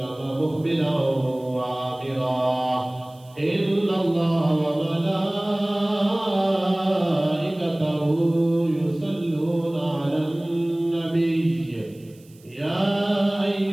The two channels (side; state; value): right; noise; hiss, 29 dB below the sound